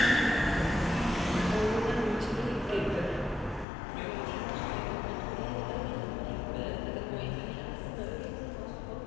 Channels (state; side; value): drops out; right; at 3.7 s